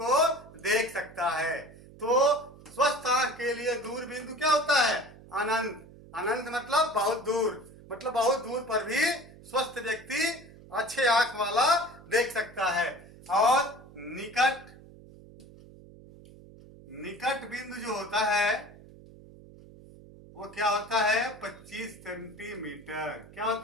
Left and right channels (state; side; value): noise; right; hum, 20 dB below the sound